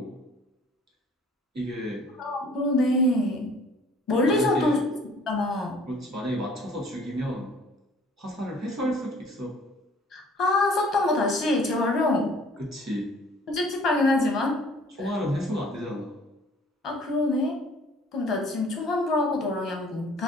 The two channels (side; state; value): both; normal; correlation 0.53